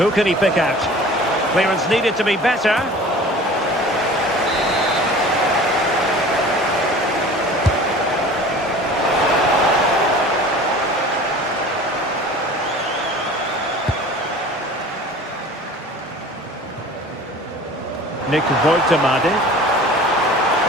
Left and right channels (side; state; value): both; normal; correlation 0.43